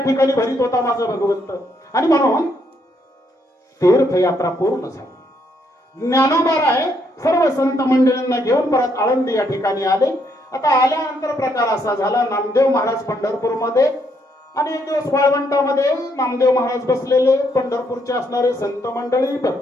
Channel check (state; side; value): normal; both; correlation 0.73